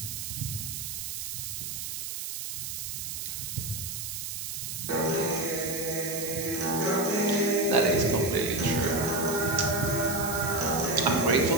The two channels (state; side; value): noise; right; hiss, 5 dB below the sound